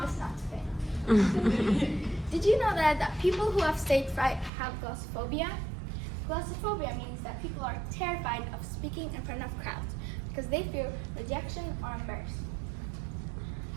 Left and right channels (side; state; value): left; drops out; at 4.5 s